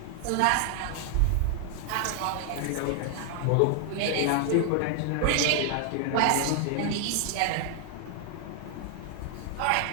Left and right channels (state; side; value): different; both; correlation 0.00